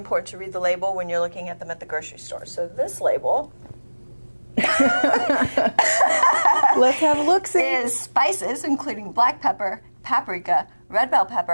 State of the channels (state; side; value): inverted; both; correlation -1.00